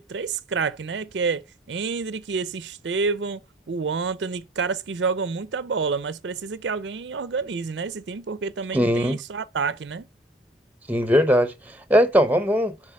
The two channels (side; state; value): both; normal; correlation 0.50